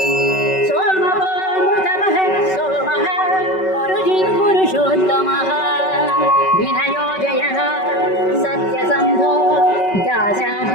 सोमवो मृतमः सोमः पुरुषोत्तमः विनयो जयः सत्यसन्धो दाशः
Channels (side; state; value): right; late; 5.3 ms